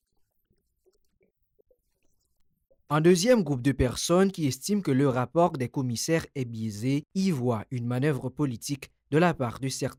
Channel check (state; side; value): identical; both; correlation 1.00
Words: des sénateurs fait partie par eux. Un deuxième groupe de personnes qui estiment que le rapport des commissaires est biaisé y voit une manœuvre politique de la part de